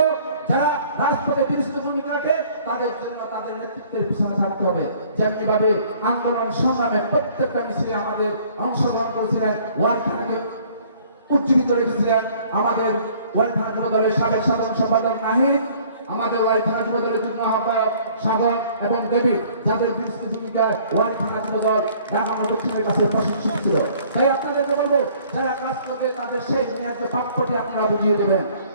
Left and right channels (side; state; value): both; inverted; correlation -0.56